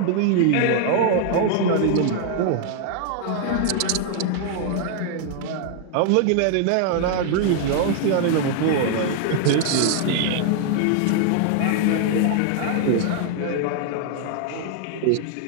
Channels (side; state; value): both; different; correlation 0.00